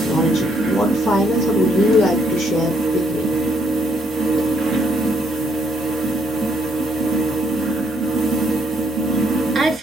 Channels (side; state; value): both; normal; correlation 0.71